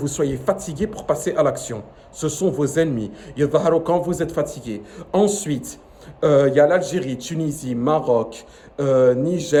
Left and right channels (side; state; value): both; identical; correlation 1.00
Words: soyez fatigué pour passer à l'action. Ce sont vos ennemis. Quand vous êtes fatigué. Ensuite, il y a l'Algérie, Tunisie, Maroc,